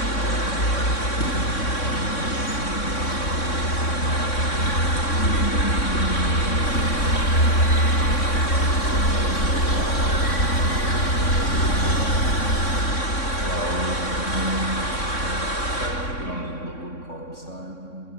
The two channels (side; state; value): right; late; 3.6 ms